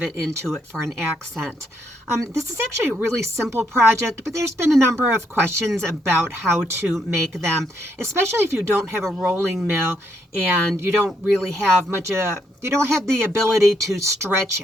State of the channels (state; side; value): normal; both; correlation 0.75